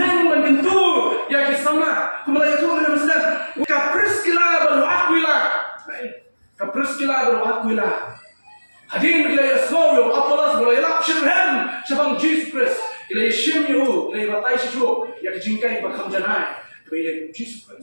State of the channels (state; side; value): inverted; both; correlation -1.00